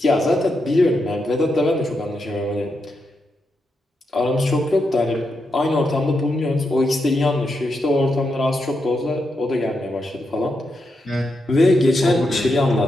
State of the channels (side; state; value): both; normal; correlation 0.84